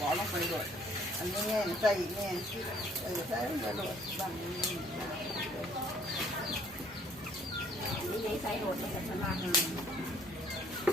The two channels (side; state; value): both; normal; correlation 0.60